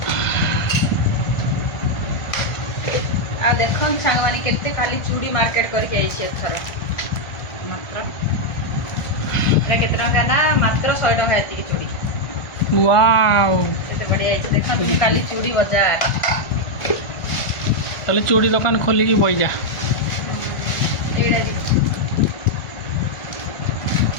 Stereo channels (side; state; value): right; late; 1.4 ms